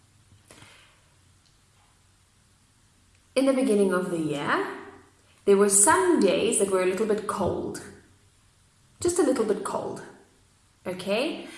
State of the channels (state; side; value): identical; both; correlation 1.00